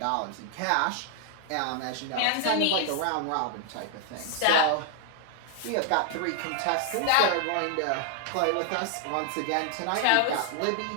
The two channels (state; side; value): different; both; correlation 0.00